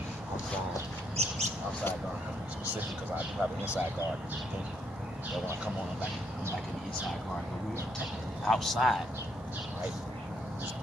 outside garden. I'm specific because I do have an inside garden. So when I come on, I'm back in the inside garden. But we are technically outside, right? It's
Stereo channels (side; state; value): both; normal; correlation 0.74